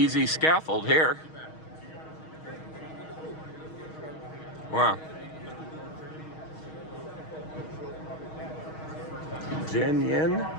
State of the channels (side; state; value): right; late; 6.4 ms